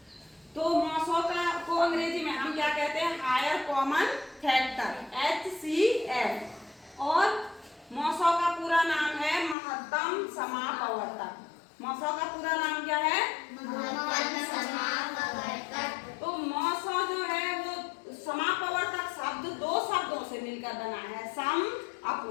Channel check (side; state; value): right; drops out; at 9.6 s